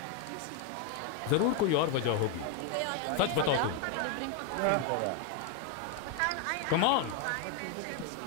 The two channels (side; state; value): both; different; correlation 0.01